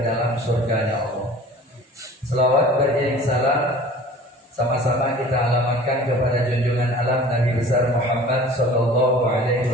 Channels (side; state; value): both; normal; correlation 0.44